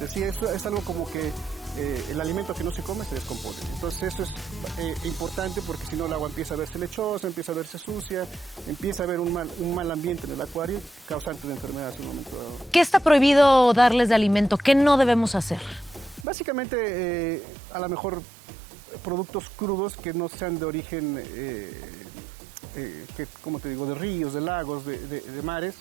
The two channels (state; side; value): drops out; left; at 16.2 s